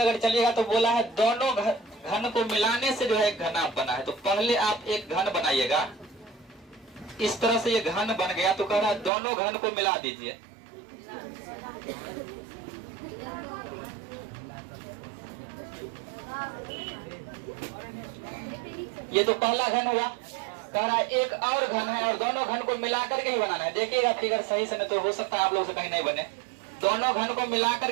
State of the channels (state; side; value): drops out; left; at 9.1 s